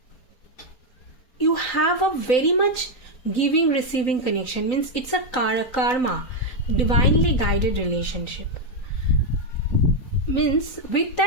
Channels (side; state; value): right; late; 3.9 ms